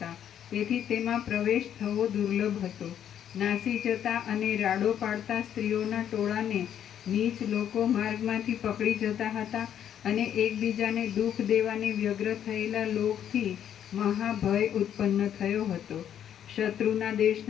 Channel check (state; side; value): quieter; right; 9.7 dB